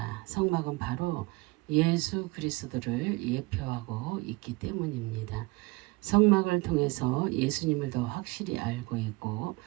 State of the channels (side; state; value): left; quieter; 24.3 dB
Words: 성막은 바로 예수 그리스도를 예표하고 있기 때문입니다. 성막을 통해서 예수님을 더 확실히 알고 있고